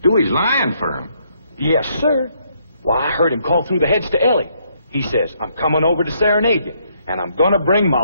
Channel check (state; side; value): inverted; both; correlation -0.71